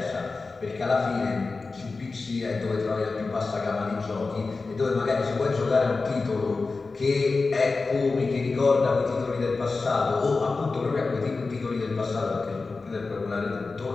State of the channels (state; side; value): quieter; right; 4.0 dB